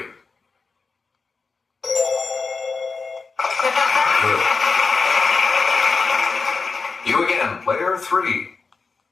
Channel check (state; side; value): quieter; right; 4.5 dB